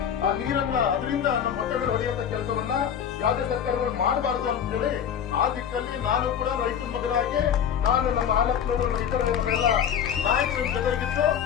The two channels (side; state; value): right; quieter; 8.6 dB